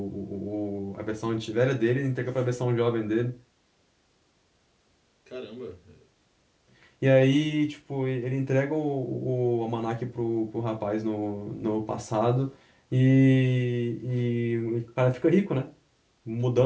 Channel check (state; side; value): identical; both; correlation 1.00